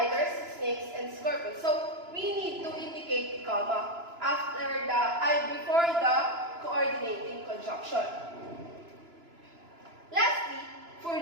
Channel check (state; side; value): late; left; 2.9 ms